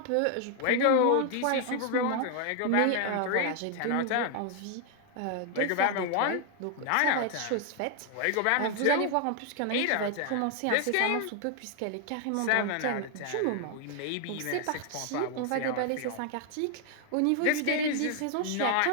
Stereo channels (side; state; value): both; different; correlation 0.00